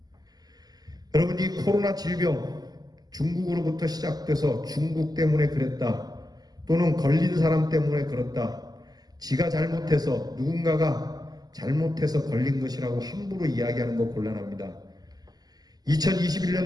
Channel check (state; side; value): late; left; 0.19 ms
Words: 여러분, 이 코로나 질병, 중국으로부터 시작돼서 중국 때문에 그랬다, 또는 걸린 사람 때문에 그렇다, 지가 잘못해서, 누군가가 잘못해서 걸린 것이라고 함부로 이야기하는 거 곤란합니다.